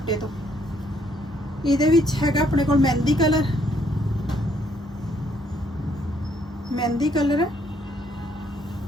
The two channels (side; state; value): both; normal; correlation 0.69